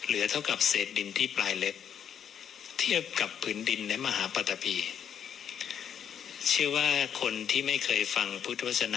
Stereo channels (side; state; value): right; quieter; 8.5 dB